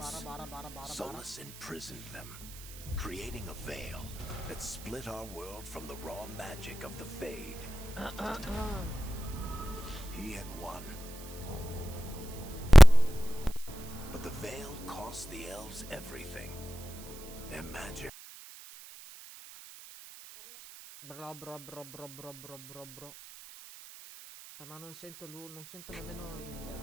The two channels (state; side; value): noise; right; hiss, 16 dB below the sound